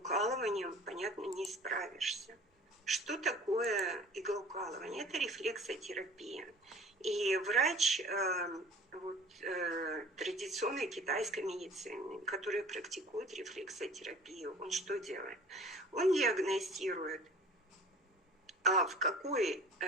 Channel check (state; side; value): normal; both; correlation 0.45